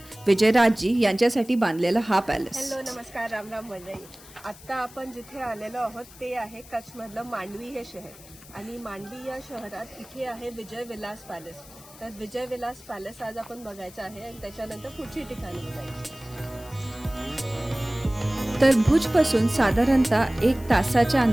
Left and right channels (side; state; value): left; noise; hiss, 20 dB below the sound